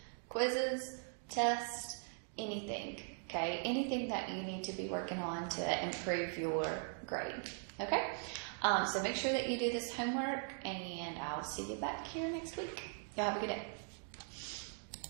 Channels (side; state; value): left; silent; 51 dB below the other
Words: quizzes, tests, anything, okay? Anything that you need to be working on to improve your grade, okay? So make sure that you do this homework, and I'll see you back here next week. Y'all have a good day.